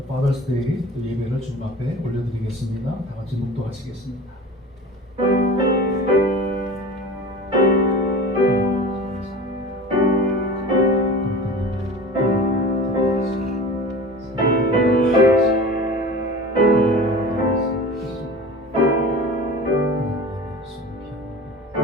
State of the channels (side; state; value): both; normal; correlation 0.36